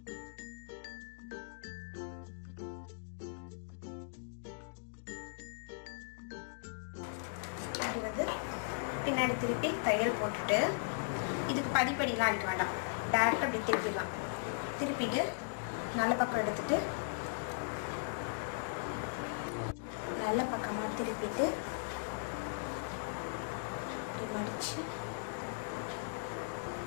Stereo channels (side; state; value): right; silent; digital silence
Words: இப்படி வந்து பின்னாடி திருப்பி தையல் போட்டுட்டு இதுக்கு பதிப்படிலாம் அடிக்க வேண்டாம். டேரெக்டாக இப்படி திருப்பிடலாம். திருப்பிட்டு நல்ல பக்கம் எடுத்துட்டு நல்ல பக்கமாக திருப்பிட்டு இப்படி மடிச்சு